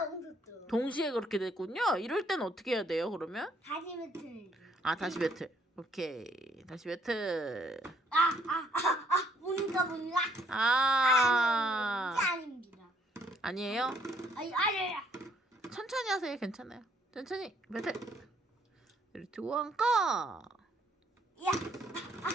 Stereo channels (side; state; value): both; normal; correlation 0.67